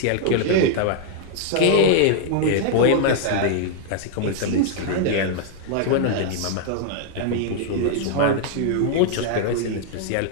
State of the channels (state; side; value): different; both; correlation -0.01